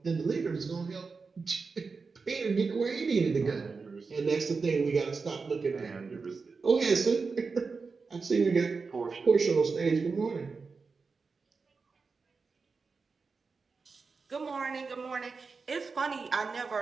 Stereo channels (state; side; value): quieter; left; 4.6 dB